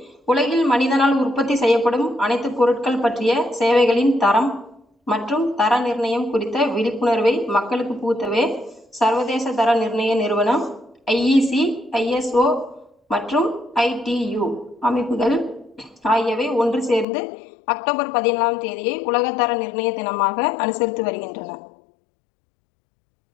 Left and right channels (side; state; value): right; drops out; at 17.1 s